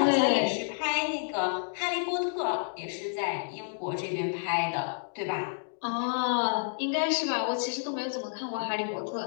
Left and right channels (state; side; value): silent; right; digital silence